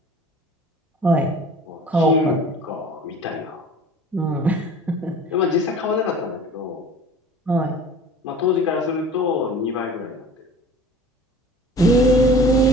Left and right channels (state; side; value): normal; both; correlation 0.43